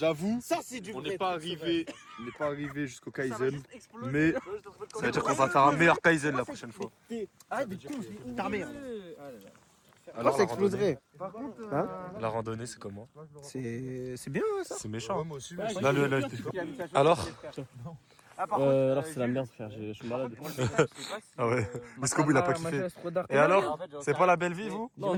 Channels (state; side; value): identical; both; correlation 1.00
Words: Ça, c'est du on vrai. n'est pas arrivé jusqu'au Kaizen, mais Ça veut dire qu'on va faire un meilleur Kaizen la prochaine fois. Arrête de con, ta mère. Alors, ça exploserait. La randonnée, c'est comment? C'est bien ça. C'est méchant. Moi aussi, Là, alors? Alors c'est la merde frère, je suis malade. Ah ouais, jusqu'au bout il a pas kiffé. Et alors? C'est pas la belle vie, vous? Non,